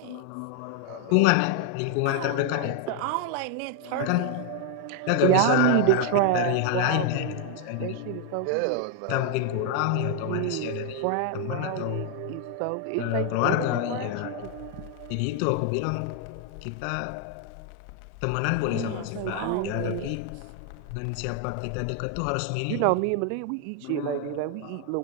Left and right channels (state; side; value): different; both; correlation 0.00